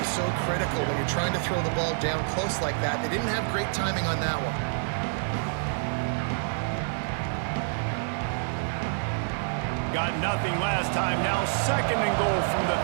so critical when you're trying to throw the ball down close like that. They didn't have great timing on that one. Got nothing last time. Now 2nd and goal from the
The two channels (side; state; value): left; silent; digital silence